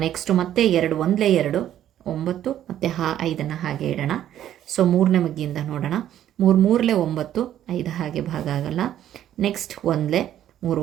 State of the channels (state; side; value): quieter; left; 11.4 dB